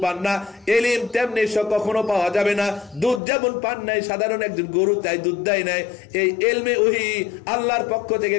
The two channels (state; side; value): drops out; right; at 3.2 s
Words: পান না, ইলম তেমনি কখনো পাওয়া যাবে না। দুধ যেমন পান নাই সাধারণ একজন গরু, তাই দুধ দেয় নাই, এই ইলমে ওহী আল্লাহর পক্ষ থেকে